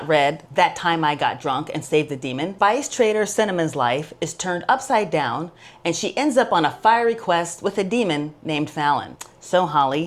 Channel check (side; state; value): both; identical; correlation 1.00